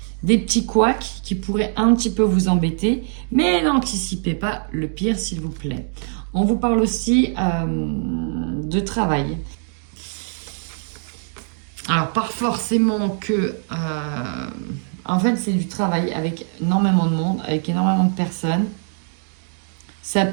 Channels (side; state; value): left; silent; 63 dB below the other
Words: des petits couacs qui pourraient un petit peu vous embêter, mais n'anticipez pas le pire, s'il vous plaît. On vous parle aussi de travail. Alors, pas forcément que... en fait, c'est du travail avec énormément de monde, avec énormément de personnes. Ça